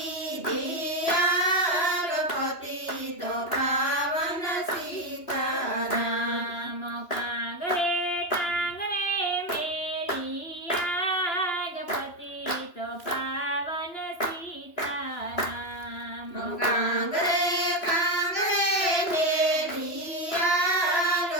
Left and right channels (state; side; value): late; right; 2.9 ms